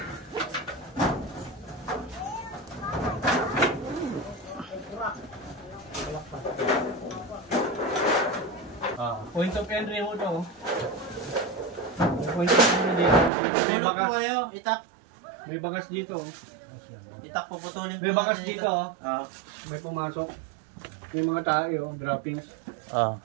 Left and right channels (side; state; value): left; drops out; at 13.3 s